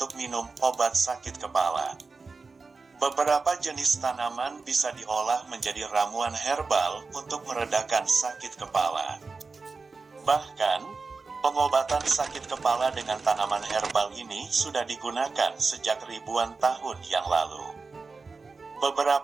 minum obat sakit kepala. Beberapa jenis tanaman bisa diolah menjadi ramuan herbal untuk meredakan sakit kepala. Bahkan, pengobatan sakit kepala dengan tanaman herbal ini sudah digunakan sejak ribuan tahun yang lalu.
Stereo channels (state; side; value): quieter; left; 4.2 dB